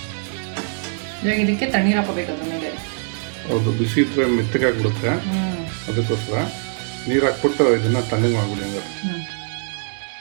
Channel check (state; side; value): silent; left; 63 dB below the other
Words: ಇವಾಗ ಇದಕ್ಕೆ ತಣ್ಣೀರು ಹಾಕೋಬೇಕು ಅದ್ರ ಮೇಲೆ. ಹೌದು, ಬಿಸಿ ಇದ್ರೆ ಮೆತ್ತಗಾಗ್ಬಿಡುತ್ತೆ. ಅದಕ್ಕೋಸ್ಕರ ನೀರು ಹಾಕ್ಬಿಟ್ಟು ಇದನ್ನ ತಣ್ಣಗೆ ಮಾಡ್ಬಿಡಿ. ಹಂಗಾರೆ